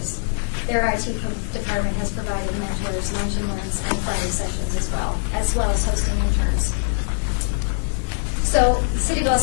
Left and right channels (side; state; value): right; silent; 58 dB below the other